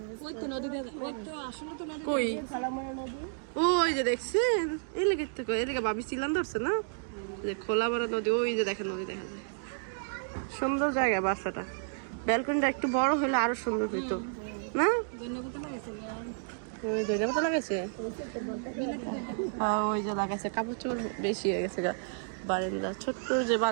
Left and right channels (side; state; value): left; silent; digital silence